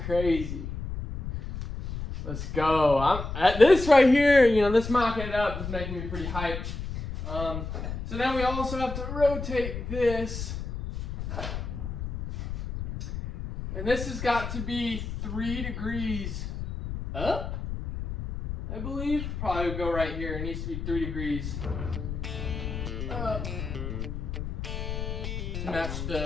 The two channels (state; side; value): noise; left; rumble, 6 dB below the sound